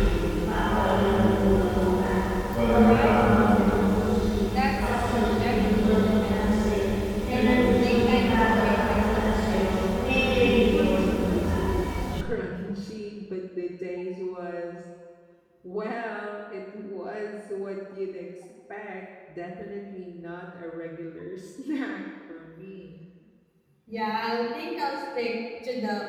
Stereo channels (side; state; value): both; identical; correlation 1.00